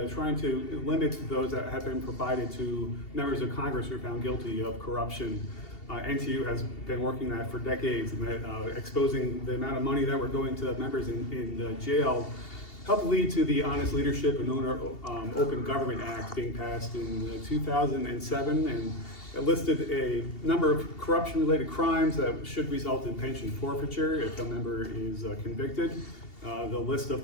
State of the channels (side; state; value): right; late; 2.8 ms